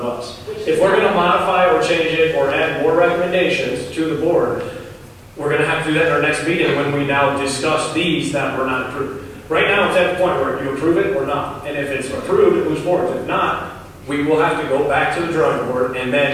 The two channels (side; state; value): both; identical; correlation 1.00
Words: us. If we're gonna modify or change it or add more recommendations to the board, we're gonna have to do that in our next meeting when we now discuss these that were not approved. Right now, it's at the point where you approve it or not, and if it's approved, it moves forward. If not, we will have to go back to the drawing board and